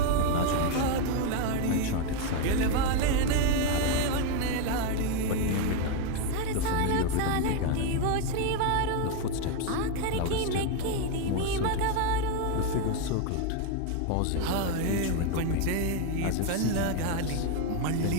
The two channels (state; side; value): different; both; correlation 0.02